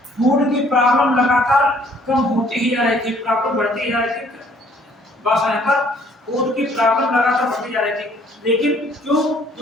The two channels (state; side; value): normal; both; correlation 0.60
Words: फूड की प्रॉब्लम लगातार कम होती ही जा रही थी, प्रॉब्लम बढ़ती ही जा रही थी। बस यहाँ पर फूड की प्रॉब्लम लगातार बढ़ती जा रही थी, लेकिन